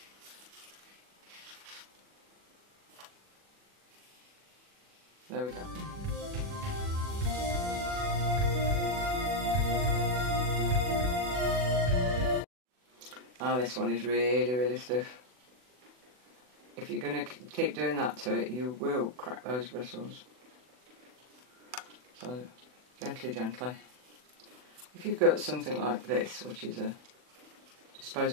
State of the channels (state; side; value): late; left; 40 ms